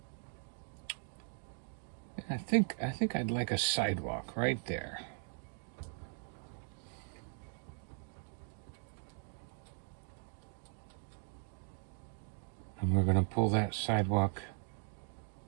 I think I'd like a sidewalk right there. And we're going to pull that sidewalk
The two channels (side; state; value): left; silent; 52 dB below the other